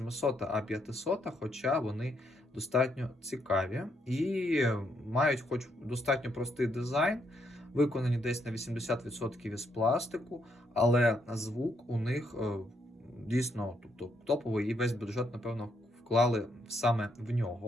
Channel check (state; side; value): normal; both; correlation 0.75